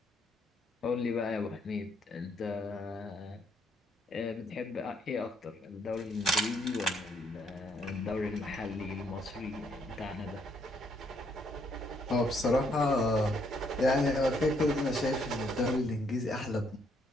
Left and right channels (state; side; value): normal; both; correlation 0.70